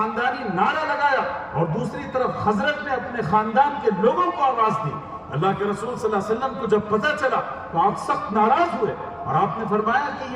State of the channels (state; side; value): identical; both; correlation 1.00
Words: نعرہ لگایا اور دوسری طرف خزرج نے اپنے خاندان کے لوگوں کو آواز دی۔ اللہ کے رسول صلی اللہ علیہ وسلم کو جب پتہ چلا تو آپ سخت ناراض ہوئے اور آپ نے فرمایا کہ